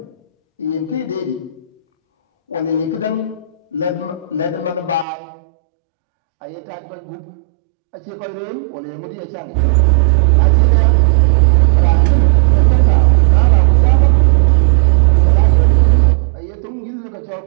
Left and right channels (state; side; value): drops out; left; at 5.1 s